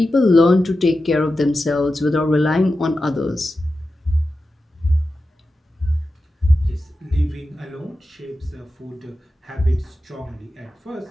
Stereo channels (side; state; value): both; normal; correlation 0.92